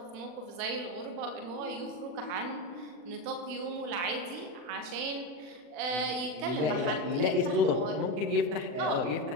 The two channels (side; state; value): left; late; 40 ms